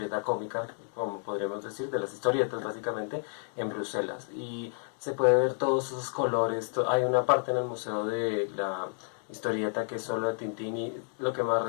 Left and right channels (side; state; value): right; silent; 57 dB below the other